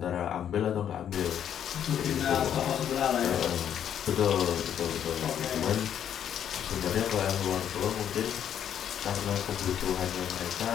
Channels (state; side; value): quieter; right; 9.4 dB